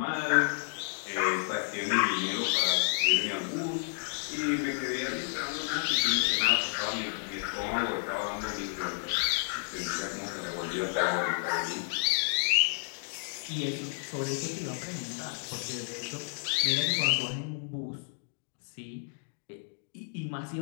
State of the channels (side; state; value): right; silent; digital silence